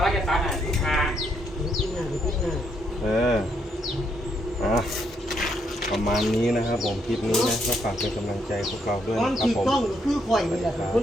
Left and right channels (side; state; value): both; normal; correlation 0.75